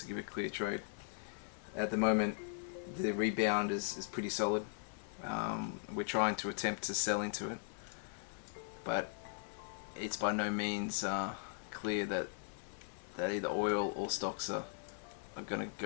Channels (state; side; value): silent; right; 52 dB below the other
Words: give a clear trade. At the moment, the rebound is pretty solid. We're trying to attempt to sell into it, but it's by no means clear that either oil or stocks are going to